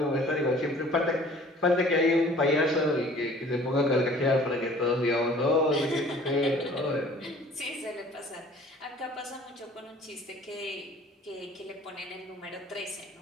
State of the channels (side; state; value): both; normal; correlation 0.51